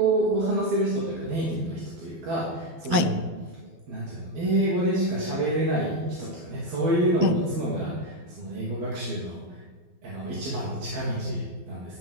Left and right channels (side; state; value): left; late; 12 ms